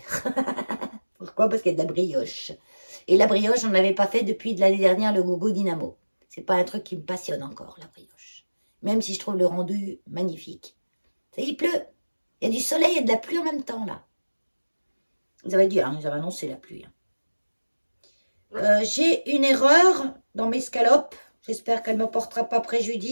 Pourquoi? Parce qu'il y a de la brioche. Et la brioche, on n'avait pas fait depuis de l'année dernière le gogo dynamo. C'est pas un truc qui me passionne encore, la brioche. Même si je trouve le rendu magnifique. Ça y est, il pleut. Il y a du soleil et de la pluie en même temps, là. Ils avaient dit, hein, ils avaient annoncé la pluie. Hein. J'ai une erreur dans mes scalopes. J'espère qu'elle ne me portera pas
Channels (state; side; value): inverted; both; correlation -1.00